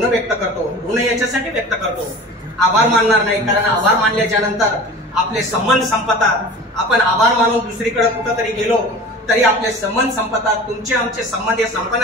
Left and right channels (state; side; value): normal; both; correlation 0.38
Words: व्यक्त करतो। ऋण याच्यासाठी व्यक्त करतो, आभार मानणार नाही, कारण आभार मानल्याच्या नंतर आपले संबंध संपतात। आपण आभार मानून दुसरीकडे कुठंतरी गेलो तरी आपले संबंध संपतात, तुमचे आमचे संबंध हे